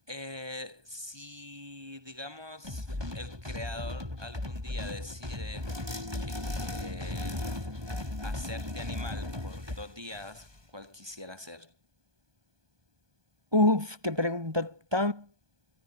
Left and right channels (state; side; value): late; left; 1.2 ms